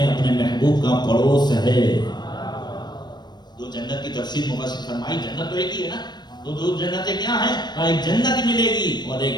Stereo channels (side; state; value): right; late; 0.21 ms